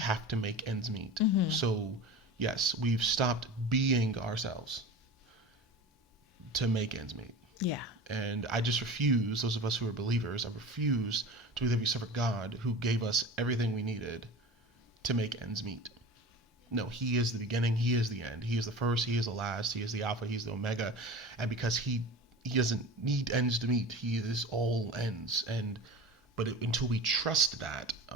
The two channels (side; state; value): both; normal; correlation 0.33